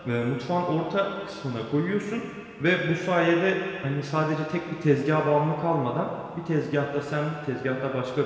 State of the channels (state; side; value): identical; both; correlation 1.00